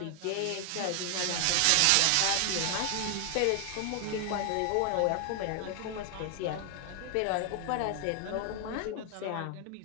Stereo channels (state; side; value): different; both; correlation 0.00